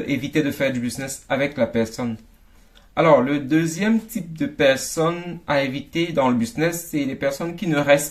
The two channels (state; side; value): identical; both; correlation 1.00